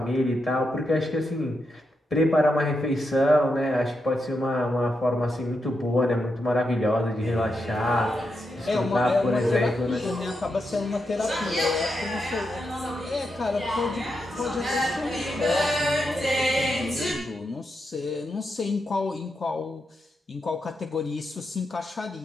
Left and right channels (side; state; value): both; normal; correlation 0.85